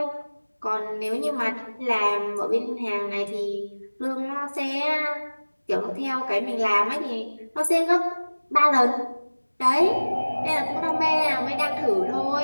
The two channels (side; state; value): both; inverted; correlation -1.00